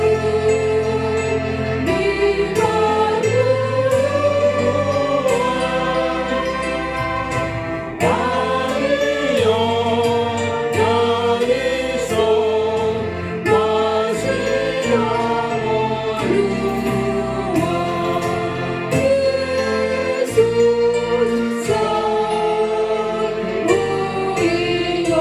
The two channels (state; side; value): identical; both; correlation 1.00